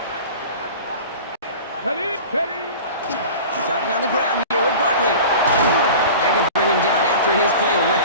Starting on the ground here with Barkley. They're going to bring him down after his play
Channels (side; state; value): both; inverted; correlation -0.37